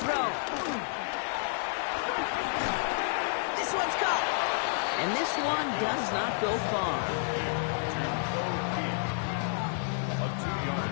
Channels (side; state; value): right; silent; digital silence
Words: throw. This one's caught. And this one does not go far.